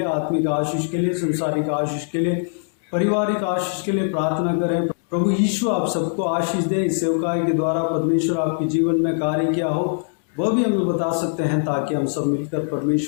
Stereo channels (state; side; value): silent; right; digital silence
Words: आत्मिक आशीष के लिए, संसारिक आशीष के लिए, पारिवारिक आशीष के लिए प्रार्थना करें। प्रभु यीशु आप सबको आशीष दे। इस सेवकाई के द्वारा परमेश्वर आपके जीवन में कार्य किया हो वह भी हमें बता सकते हैं, ताकि हम सब मिलकर